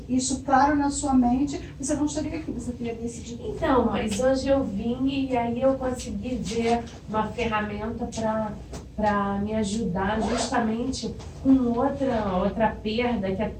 isso claro na sua mente, você não estaria aqui, você teria decidido. Então, mas hoje eu vim e aí eu consegui ver uma ferramenta para me ajudar justamente com outra perda que é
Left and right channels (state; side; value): identical; both; correlation 1.00